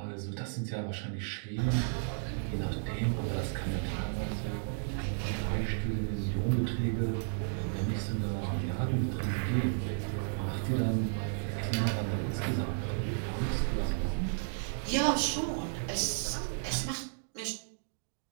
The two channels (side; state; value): left; silent; digital silence